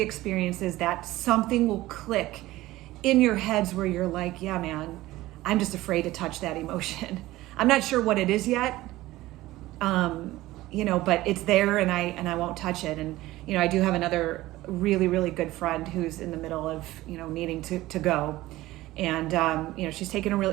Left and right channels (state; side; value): quieter; left; 17.3 dB